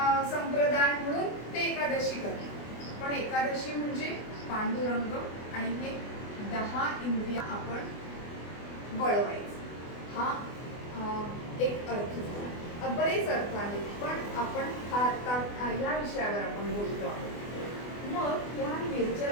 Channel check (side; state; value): right; late; 24 ms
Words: संप्रदाय म्हणून ते एकादशी करतात. पण एकादशी म्हणजे पांडुरंग आणि हे 10 इंद्रिय आपण वळवायचं. हा एक अर्थ झाला. बरेच अर्थ आहेत पण आपण हा आता या विषयावर आपण बोलतो आहोत. मग या